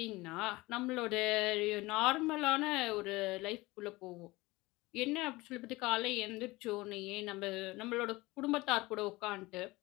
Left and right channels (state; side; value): quieter; right; 21.1 dB